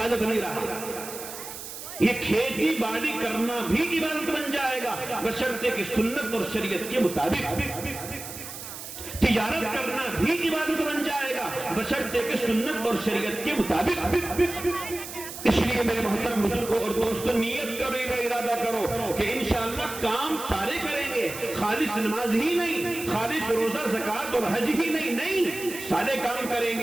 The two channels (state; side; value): noise; right; hiss, 10 dB below the sound